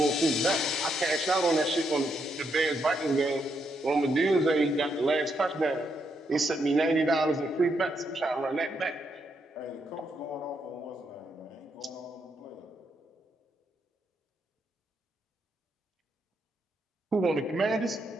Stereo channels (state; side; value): normal; both; correlation 0.78